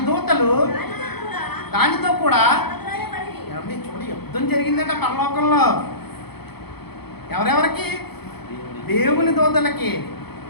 దూతలు దానితో కూడా చూడండి యుద్ధం జరిగిందట పరలోకంలో. ఎవరెవరికి? దేవుని దూతలకి,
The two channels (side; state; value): right; late; 0.97 ms